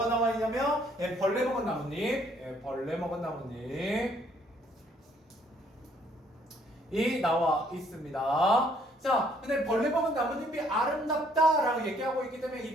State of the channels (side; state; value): both; normal; correlation 0.65